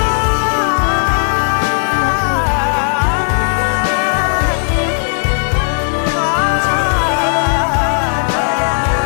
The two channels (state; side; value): silent; right; 65 dB below the other